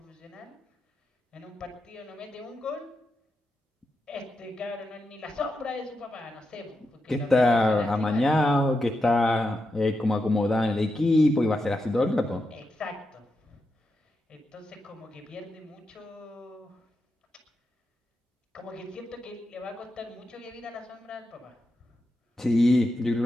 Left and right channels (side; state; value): both; normal; correlation 0.87